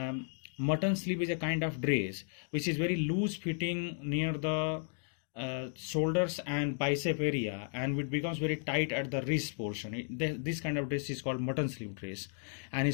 Mutton sleeve is a kind of dress which is very loose fitting near the shoulders and bicep area, and it becomes very tight at the wrist portion. This kind of dress is called mutton sleeve dress. And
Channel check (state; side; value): silent; right; 55 dB below the other